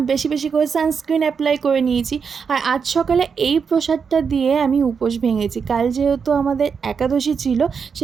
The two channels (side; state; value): left; quieter; 6.1 dB